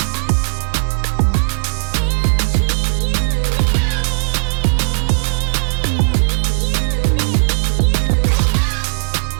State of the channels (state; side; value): silent; left; 64 dB below the other